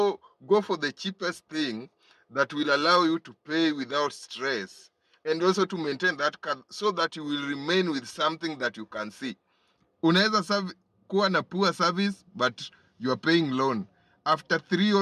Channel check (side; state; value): both; identical; correlation 1.00